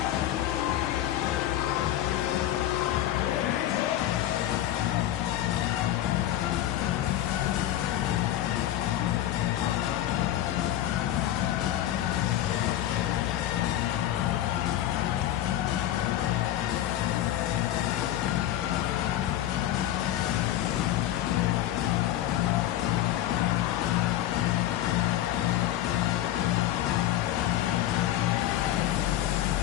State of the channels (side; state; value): right; quieter; 13.0 dB